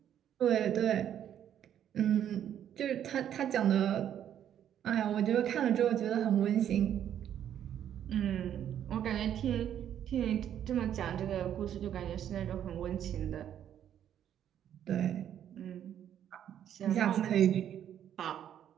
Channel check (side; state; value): left; quieter; 10.1 dB